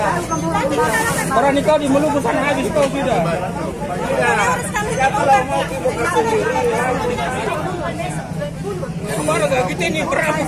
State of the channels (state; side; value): identical; both; correlation 1.00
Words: Orang nikah di Maluku sana habis kau sudah. Ya kalau mau buka sendiri. Kemarin kita ini berapa